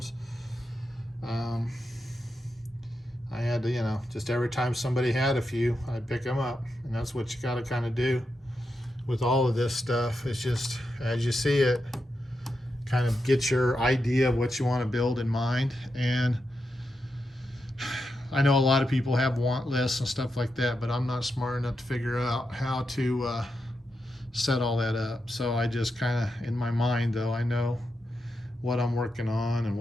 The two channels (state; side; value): normal; both; correlation 0.86